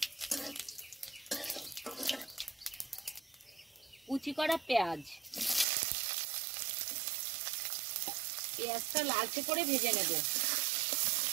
কুচি করা পেঁয়াজ। পেঁয়াজটা লালচে করে ভেজে নেব।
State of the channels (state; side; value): drops out; left; at 5.7 s